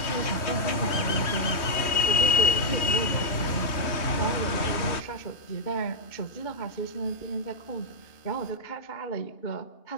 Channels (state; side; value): late; right; 3.1 ms